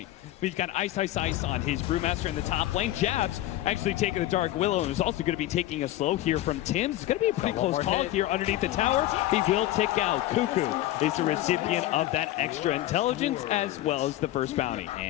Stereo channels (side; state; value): right; quieter; 15.0 dB